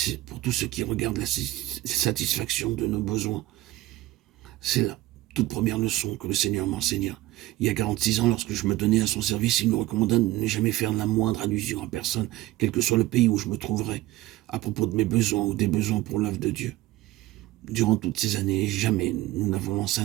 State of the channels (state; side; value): quieter; left; 16.8 dB